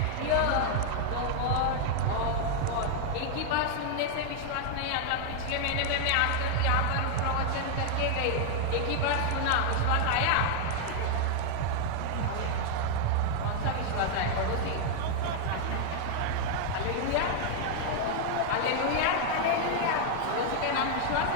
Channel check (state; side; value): different; both; correlation 0.00